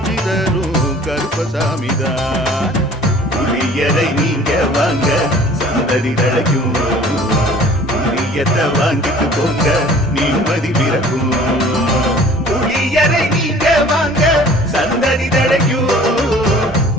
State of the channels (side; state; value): both; normal; correlation 0.49